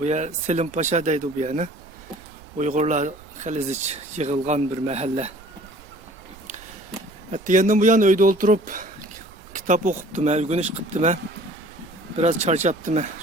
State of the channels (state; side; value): noise; right; rumble, 23 dB below the sound